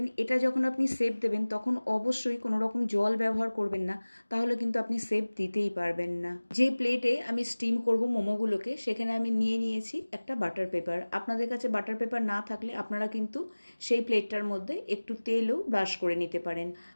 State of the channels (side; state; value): both; inverted; correlation -1.00